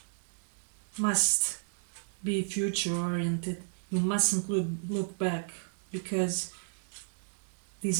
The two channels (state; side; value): silent; left; digital silence